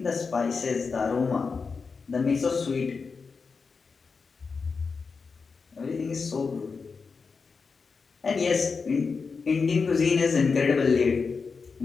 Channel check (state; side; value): quieter; right; 4.9 dB